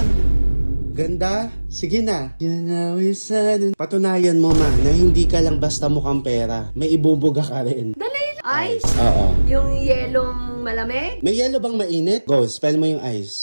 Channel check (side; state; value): both; inverted; correlation -1.00